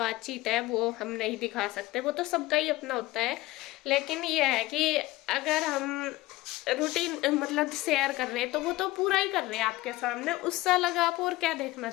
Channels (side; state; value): right; quieter; 18.7 dB